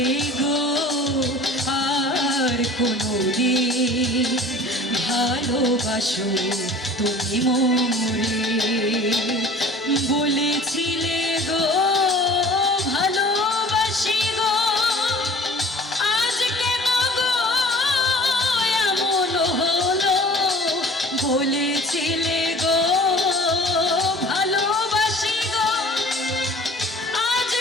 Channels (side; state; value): both; normal; correlation 0.46